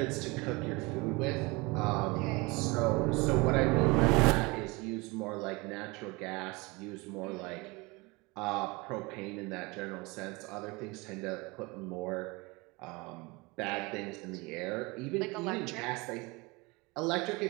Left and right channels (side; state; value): left; quieter; 25.3 dB